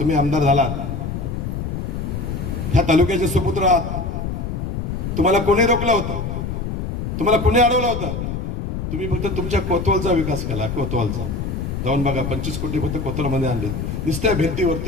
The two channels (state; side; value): noise; left; rumble, 4 dB below the sound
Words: आमदार झालात, ह्या तालुक्याचे सुपुत्र आहात. तुम्हाला कोणी रोखलं होतं? तुम्हाला कोणी अडवलं होतं? तुम्ही फक्त तुमच्या कोतवालचा विकास केला. कोतवालचा जाऊन बघा, 25 कोटी फक्त कोतवालमध्ये आणले. नुसत्या